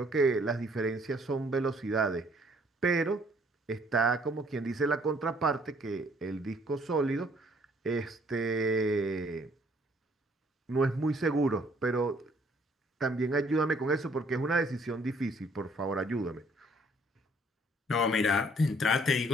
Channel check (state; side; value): normal; both; correlation 0.62